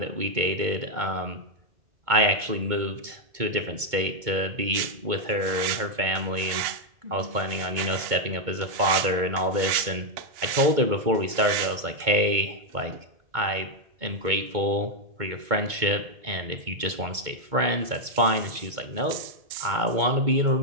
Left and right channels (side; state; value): left; late; 2.2 ms